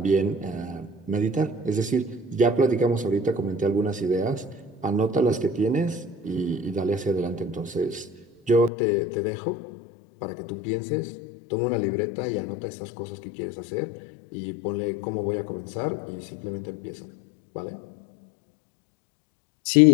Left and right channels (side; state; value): right; drops out; at 8.7 s